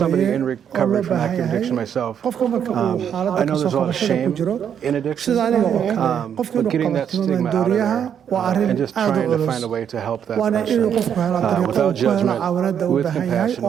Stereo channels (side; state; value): left; quieter; 8.5 dB